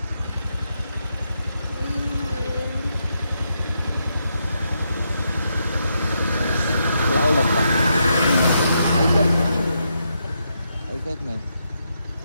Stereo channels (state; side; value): inverted; both; correlation -0.81